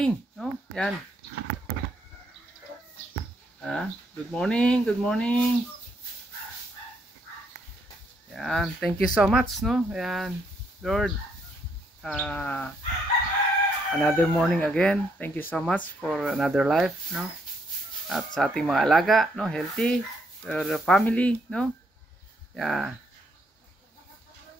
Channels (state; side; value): normal; both; correlation 0.73